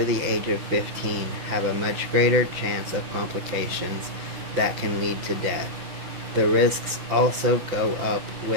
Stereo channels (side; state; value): left; late; 6.0 ms